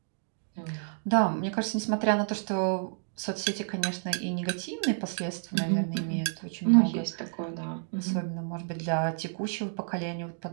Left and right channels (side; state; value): left; silent; digital silence